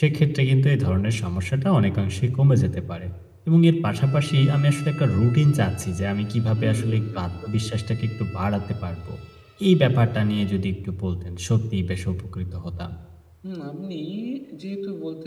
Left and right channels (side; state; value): both; identical; correlation 1.00